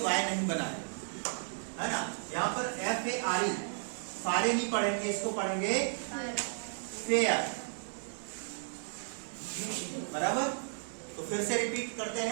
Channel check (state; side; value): silent; left; digital silence